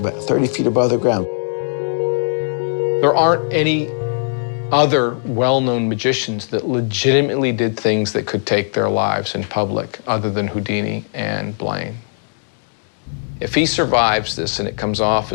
30 feet above the ground. There aren't any other well-known magicians that legitimately did things that could take their lives in public other than Houdini and Blaine. If he survives this and it comes off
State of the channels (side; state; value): right; silent; digital silence